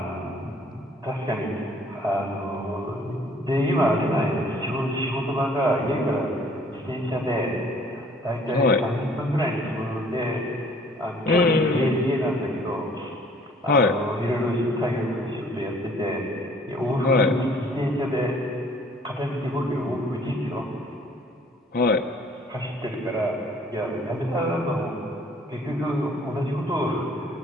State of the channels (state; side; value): normal; both; correlation 0.57